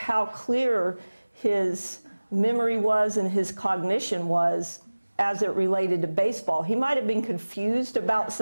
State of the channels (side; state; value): both; inverted; correlation -1.00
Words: clear his memory was and his cognition was as it related to baseball. He might have been confused about